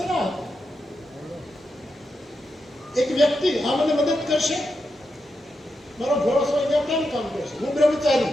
એક વ્યક્તિ આ મને મદદ કરશે, મારો ભરોસો અહીંયા કેમ કામ કરશે? હું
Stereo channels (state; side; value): normal; both; correlation 0.86